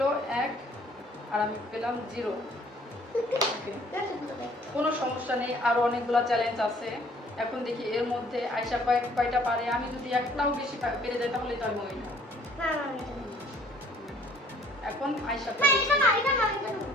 1 আর আমি পেলাম 0। কোনো সমস্যা নেই, আরো অনেকগুলো চ্যালেঞ্জ আছে। এখন দেখি এর মধ্যে আয়শা কয়টা পারে। আমি যদি একটাও বেশি পেরে যাই তাহলে তো আমি উইনার। এখন আয়শা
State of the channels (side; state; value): both; normal; correlation 0.58